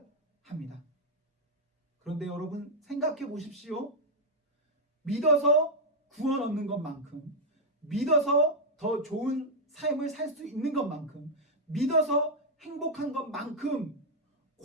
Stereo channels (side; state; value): both; normal; correlation -0.02